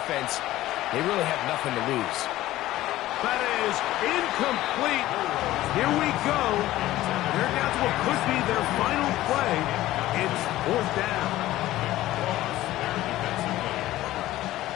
They really have nothing to lose. That is incomplete. Here we go. They're down to what could be their final play. It's 4th down.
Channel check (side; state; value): right; quieter; 15.5 dB